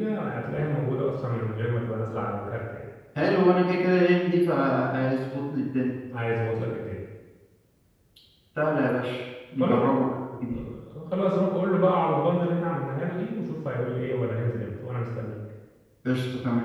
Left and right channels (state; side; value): identical; both; correlation 1.00